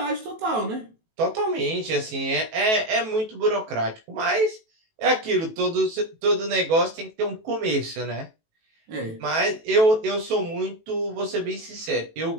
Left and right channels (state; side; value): late; left; 18 ms